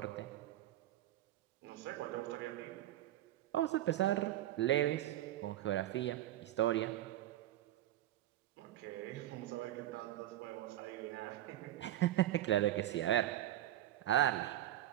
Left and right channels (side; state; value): left; quieter; 13.5 dB